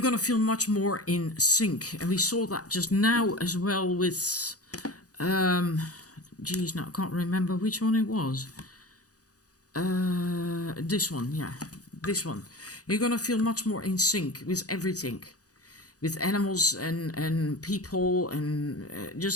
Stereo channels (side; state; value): right; late; 0.67 ms